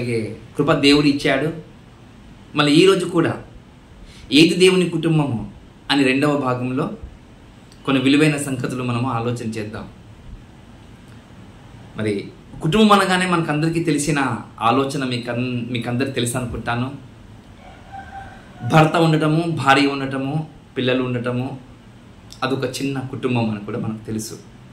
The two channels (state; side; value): identical; both; correlation 1.00